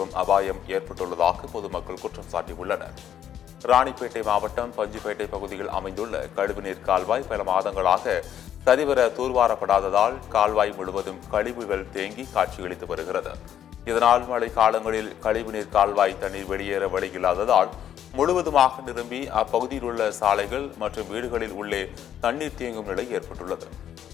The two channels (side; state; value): right; quieter; 10.1 dB